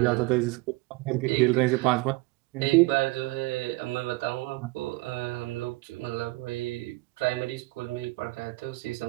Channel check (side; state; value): left; quieter; 22.5 dB